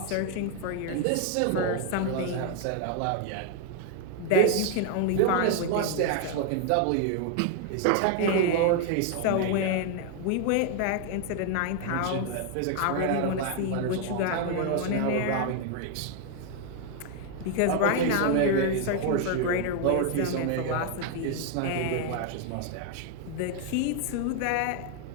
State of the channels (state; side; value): different; both; correlation 0.00